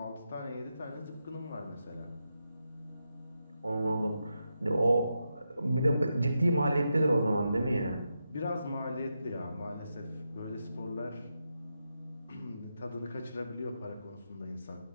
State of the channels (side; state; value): both; inverted; correlation -0.86